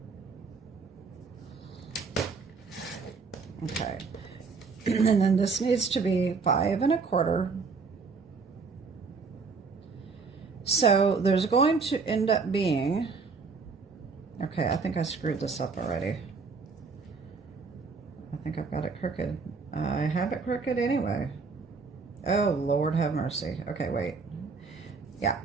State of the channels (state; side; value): quieter; left; 4.7 dB